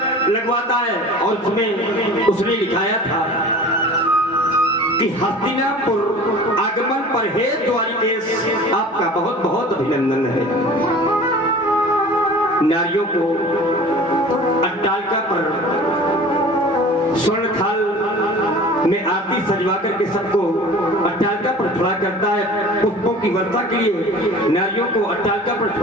लगवाता है और उसने लिखाया था कि हस्तिनापुर आगमन पर हे द्वारिकेश आपका बहुत बहुत अभिनंदन है। नारियों को अट्टालिका पर स्वर्ण थाल में आरती सजवा करके सबको अट्टालिका पर खड़ा करता है। पुष्पों की वर्षा के लिए नारियों को अट्टालिका पर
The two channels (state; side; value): normal; both; correlation 0.42